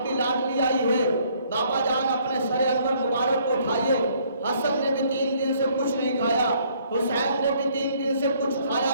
کی لاڈلی آئی ہے، بابا جان اپنے سر انور مبارک کو اٹھائیے۔ حسن نے بھی 3 دن سے کچھ نہیں کھایا، حسین نے بھی 3 دن سے کچھ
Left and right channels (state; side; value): inverted; both; correlation -0.64